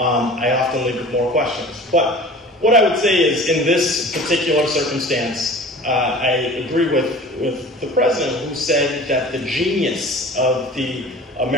often leave with more questions. But what I would say is, in this particular circumstance, I agree with the president, who said that the genius of the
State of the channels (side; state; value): both; normal; correlation 0.42